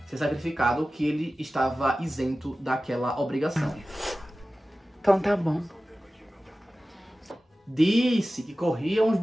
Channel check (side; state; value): both; normal; correlation 0.96